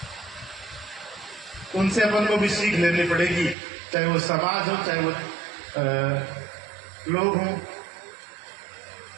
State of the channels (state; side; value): drops out; left; at 3.6 s